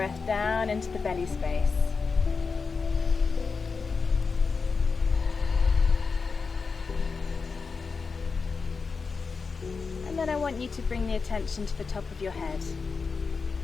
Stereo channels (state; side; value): quieter; right; 4.8 dB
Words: down into the belly space. And then I want you to bring the attention to the top of your head.